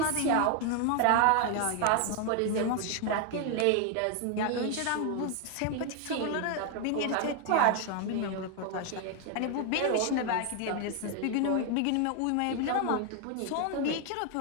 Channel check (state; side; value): different; both; correlation 0.01